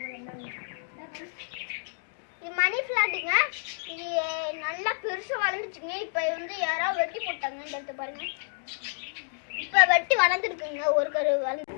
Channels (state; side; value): silent; right; digital silence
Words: இது மணி பிளான்ட்டுங்க. இது நல்லா பெருசா வளர்ந்துச்சுங்க. இப்போ வந்து யாரோ வெட்டி போட்டாங்க. இந்த இடத்த பாருங்க, இப்போ வெட்டி வளர்ந்துருக்குங்க. ஒரு கரு வளர்ந்து